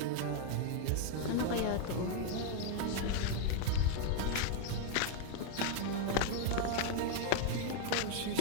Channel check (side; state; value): both; different; correlation 0.00